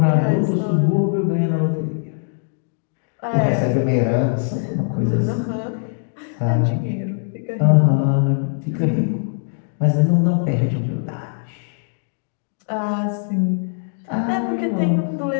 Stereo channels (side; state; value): right; silent; digital silence